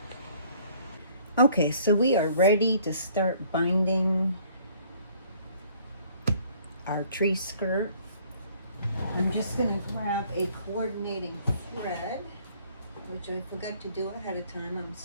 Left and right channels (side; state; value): both; inverted; correlation -0.58